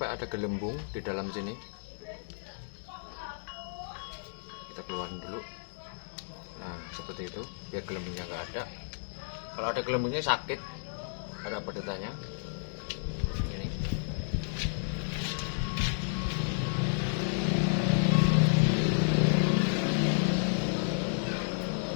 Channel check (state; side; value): silent; right; digital silence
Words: ada gelembung di dalam sini. Kita keluarin dulu. Nah seperti itu biar gelembungnya nggak ada. Kalau ada gelembungnya sakit, ada pedetannya. Ini.